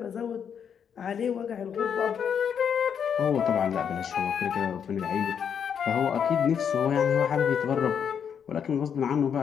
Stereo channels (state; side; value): quieter; right; 7.7 dB